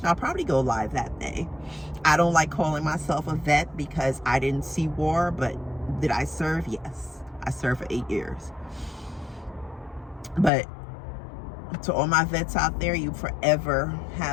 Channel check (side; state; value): right; drops out; at 10.5 s